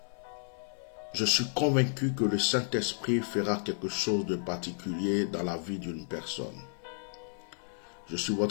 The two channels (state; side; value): silent; right; 56 dB below the other